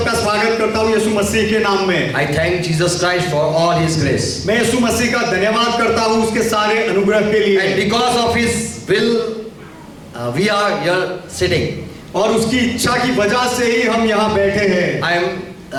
स्वागत करता हूँ यीशु मसीह के नाम में। I thank Jesus Christ for all his grace. मैं यीशु मसीह का धन्यवाद करता हूँ उसके सारे अनुग्रह के लिए। And because of his will we are here sitting. और उसकी इच्छा की वजह से ही हम यहाँ बैठे हैं। I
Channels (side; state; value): both; identical; correlation 1.00